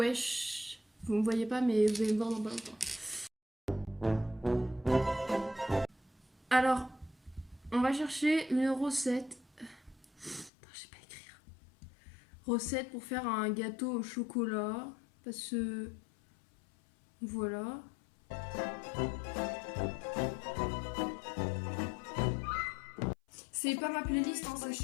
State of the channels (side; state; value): right; drops out; at 10.5 s